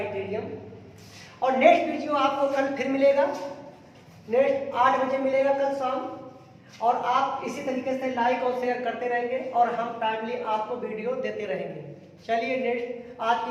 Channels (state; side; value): identical; both; correlation 1.00